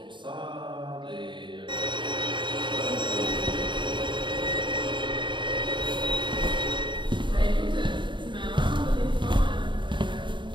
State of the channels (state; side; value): late; left; 0.23 ms